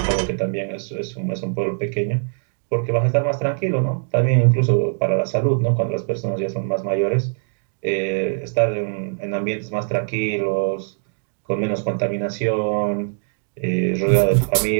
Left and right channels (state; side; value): silent; left; 64 dB below the other